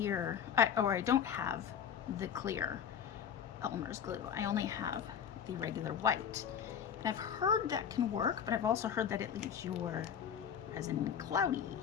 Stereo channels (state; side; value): quieter; right; 8.2 dB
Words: I don't have the clear Elmer's glue. I only have the regular white. And I've heard that can work, but I've also heard that it leaves your resin cloudy.